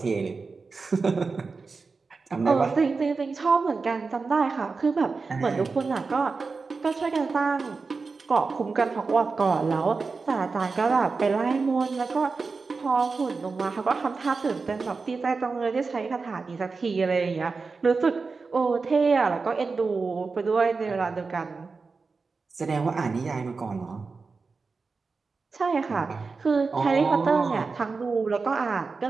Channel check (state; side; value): quieter; left; 4.4 dB